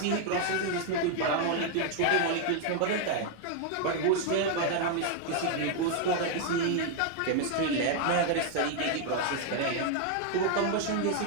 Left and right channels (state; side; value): different; both; correlation 0.00